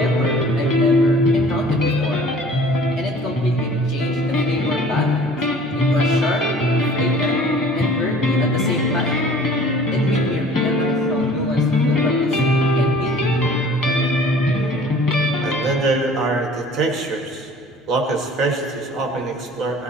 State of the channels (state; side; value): normal; both; correlation 0.49